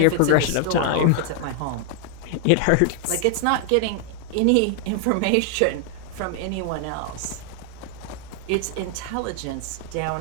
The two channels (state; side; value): different; both; correlation 0.00